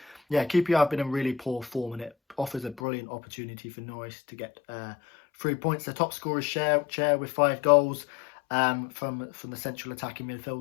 yeah, QPR have been in really poor form, and it offers a brilliant opportunity for Norwich to get 3 points. The top scorers share with 5 goals from the central attacking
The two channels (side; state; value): right; drops out; at 2.8 s